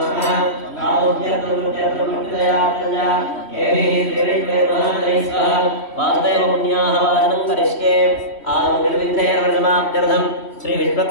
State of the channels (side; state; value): right; late; 3.1 ms